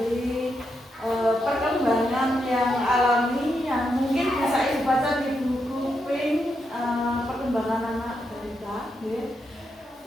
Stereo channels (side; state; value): both; normal; correlation 0.83